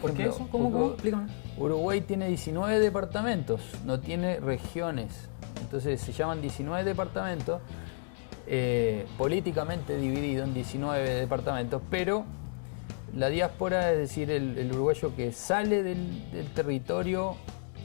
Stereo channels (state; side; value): silent; right; digital silence